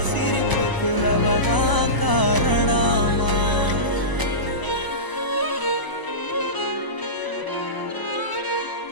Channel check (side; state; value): right; late; 1.0 ms